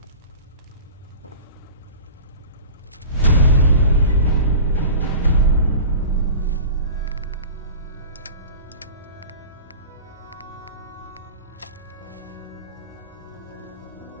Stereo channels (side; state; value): both; inverted; correlation -0.36